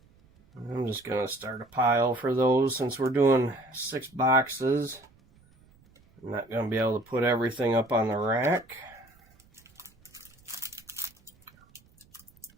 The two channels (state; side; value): noise; right; rumble, 30 dB below the sound